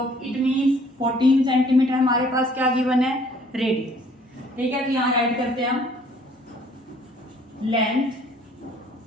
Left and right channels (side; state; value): both; normal; correlation 0.58